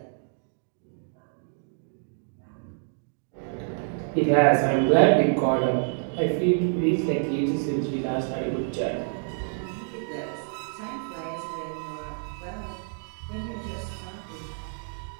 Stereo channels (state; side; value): silent; left; digital silence